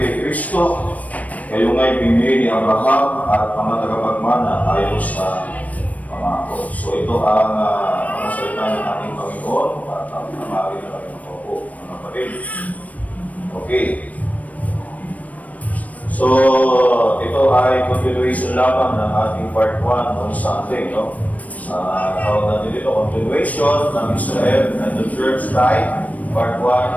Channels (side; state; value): right; late; 0.070 ms